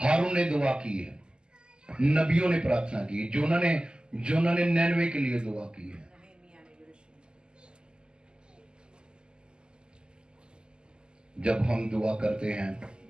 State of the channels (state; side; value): late; left; 0.047 ms